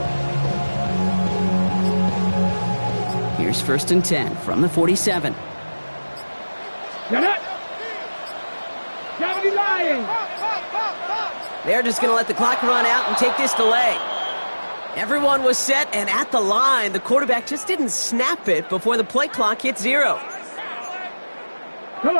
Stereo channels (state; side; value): inverted; both; correlation -1.00